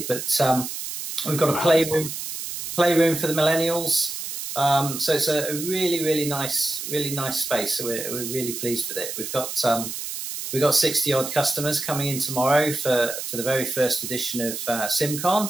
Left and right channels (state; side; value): noise; right; hiss, 6 dB below the sound